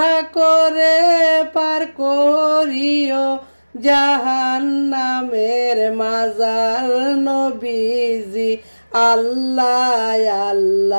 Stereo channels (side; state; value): both; inverted; correlation -1.00